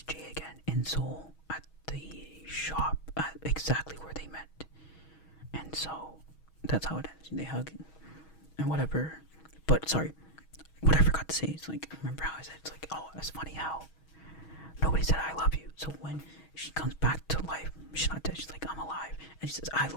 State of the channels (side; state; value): right; late; 6.3 ms